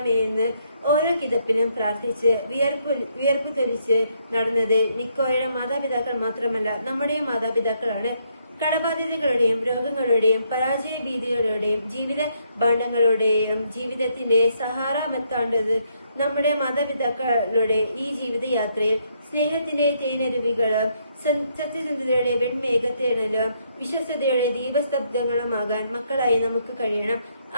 ഓരോ കിതപ്പിനും പ്രാർത്ഥിച്ച് വിയർപ്പ് തൊലിച്ച് നടന്നത് നിക്കോയുടെ മാതാപിതാക്കൾ മാത്രമല്ല, നമ്മുടെയും മാതാപിതാക്കളാണ്. കടബാധ്യതകളുടെയും രോഗങ്ങളുടെയും പരാജയ ഭീതികളുടെയും ജീവിത ഭാണ്ഡങ്ങളുടെയും ജീവിതത്തിന്റെ സഹാറ മെത്താണ്ടത് നമ്മുടെ മാതാപിതാക്കളുടെ ഈ ജീവിതയാത്രയിൽ സ്നേഹത്തിന്റെ തേനരുവികളും സത്യസന്ധതയുടെ വെൺമേഘത്തേണലും വിശ്വസ്തയുടെ ദീപസ്തബ്ധങ്ങളുമാകാൻ മക്കളായി നമുക്ക് കഴിയണം.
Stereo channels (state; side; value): inverted; both; correlation -0.73